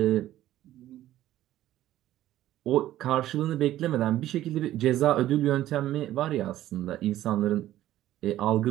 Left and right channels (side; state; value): left; quieter; 13.7 dB